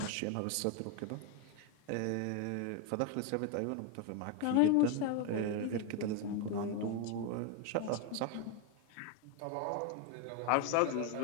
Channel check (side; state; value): both; different; correlation 0.02